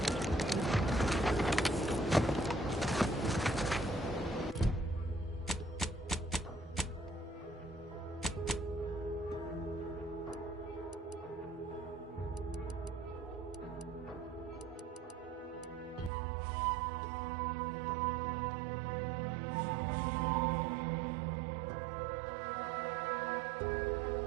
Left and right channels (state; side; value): drops out; left; at 16.1 s